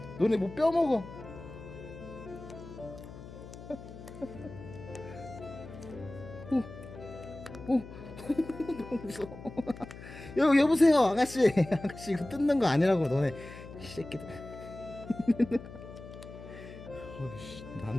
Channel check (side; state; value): left; noise; hum, 14 dB below the sound